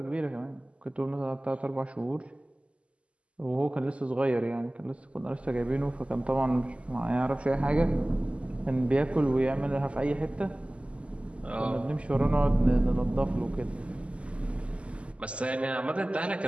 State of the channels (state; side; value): late; left; 0.058 ms